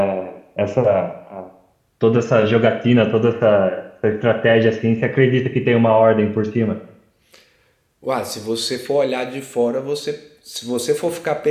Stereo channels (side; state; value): both; identical; correlation 1.00